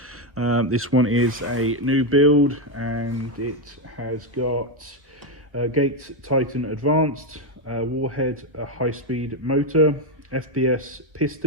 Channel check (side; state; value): left; late; 1.3 ms